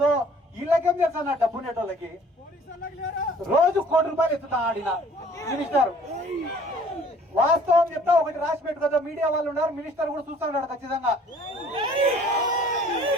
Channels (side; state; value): both; normal; correlation 0.54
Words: వీళ్ళకేం తెలుసా, నా డబ్బు నెట్టోళ్ళకి రోజు ₹1 కోటి ఎత్తుతా ఆడిన మినిస్టర్. వాస్తవం చెప్తా, ఒకటి రాసి పెట్టుకోదా, మీడియా వాళ్ళు ఉన్నారు, మినిస్టర్ కూడా చూస్తున్నాడు ఖచ్చితంగా.